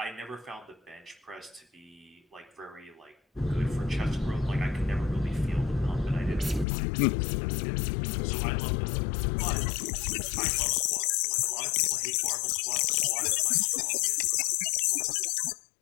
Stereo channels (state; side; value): drops out; right; at 6.7 s